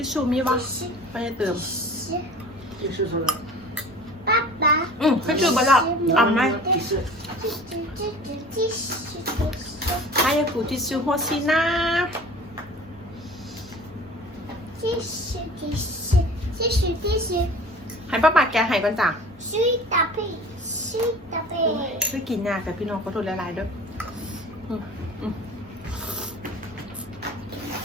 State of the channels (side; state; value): both; normal; correlation 0.43